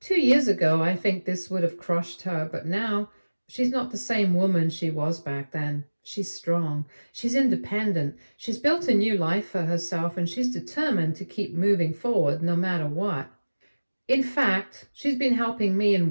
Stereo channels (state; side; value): inverted; both; correlation -1.00